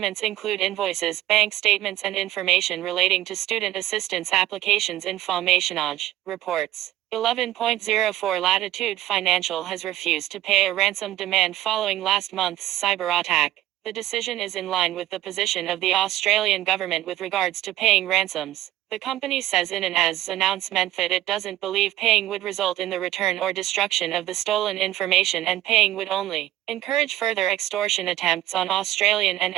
include invoices, bank statements and information relating to student assistance applications. Informationage reports. 11.04 Latitude Financial has refused to pay a ransom demand following last month's cyber attack. The decision is in line with the position of the Australian government with regards to paying ransoms. The company says in an announcement that it doesn't believe paying would result in the return or destruction of the stolen information, and paying would only encourage further extortion attempts on Australian and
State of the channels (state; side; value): quieter; left; 14.4 dB